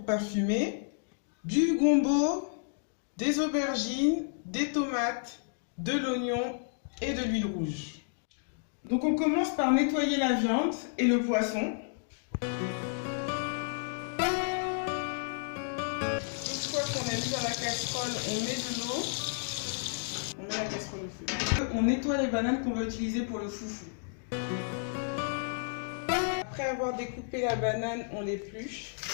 parfumer, du gombo, des aubergines, des tomates, de l'oignon et de l'huile rouge. Donc on commence par nettoyer la viande et le poisson. Une fois qu'on a mis dans la casserole, on met de l'eau. On met la casserole au feu. On nettoie les bananes qu'on va utiliser pour le foufou. Après avoir découpé la banane, on l'épluche.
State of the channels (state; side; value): silent; right; digital silence